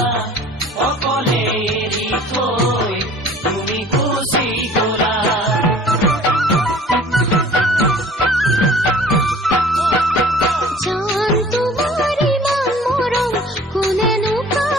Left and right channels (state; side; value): normal; both; correlation 0.49